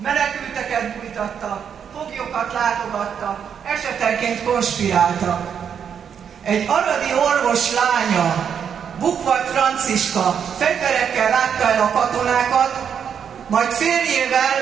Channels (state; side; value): quieter; left; 7.7 dB